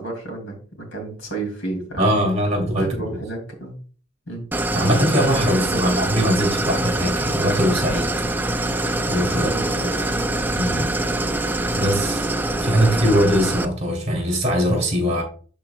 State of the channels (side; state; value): both; normal; correlation 0.60